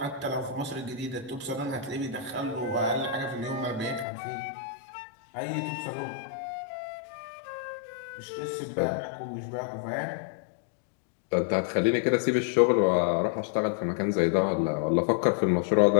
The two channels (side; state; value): right; drops out; at 4.0 s